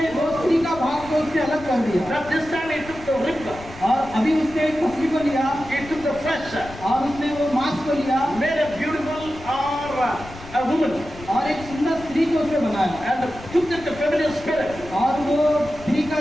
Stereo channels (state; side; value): noise; left; rumble, 16 dB below the sound